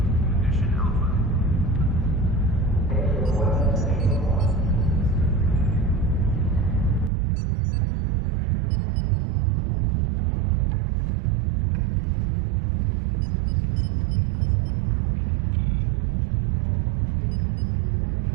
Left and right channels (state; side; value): drops out; left; at 7.1 s